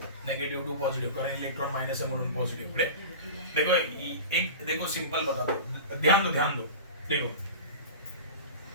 नेगेटिव्ह टू पॉझिटिव्ह, कारण इलेक्ट्रॉन मायनस आहे म्हणून पॉझिटिव्ह. देखो एक देखो सिंपल बता दो, ध्यान दो देखो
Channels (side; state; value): both; inverted; correlation -0.32